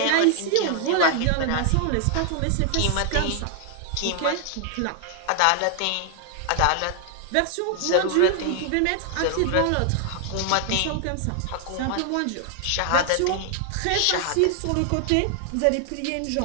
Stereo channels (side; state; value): both; different; correlation 0.00